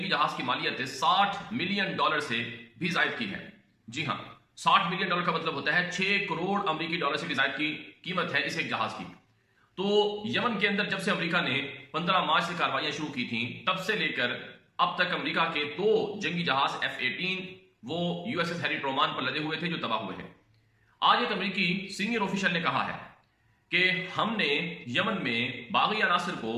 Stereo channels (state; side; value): identical; both; correlation 1.00